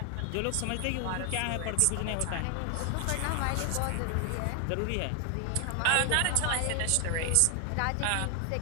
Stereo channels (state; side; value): different; both; correlation 0.00